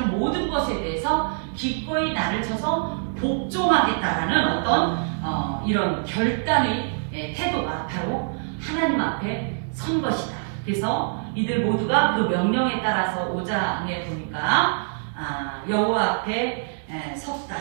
모든 것에 대해서 기꺼이 나를 쳐서 복종하겠다라는 어떤 이런 결단의 태도가 바로 하나님 앞에 선 것이다. 그래서 이들 모두가 그 명령에 따라서 5장에 보니까 여호와 앞에 섰다.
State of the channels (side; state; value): left; silent; digital silence